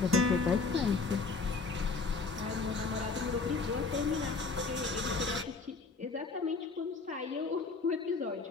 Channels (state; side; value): quieter; right; 4.4 dB